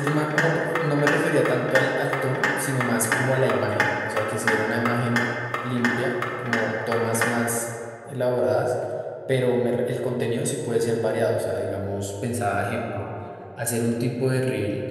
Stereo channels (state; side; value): identical; both; correlation 1.00